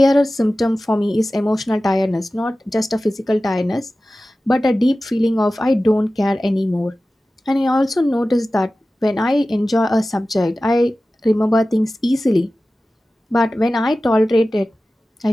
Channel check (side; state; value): both; normal; correlation 0.96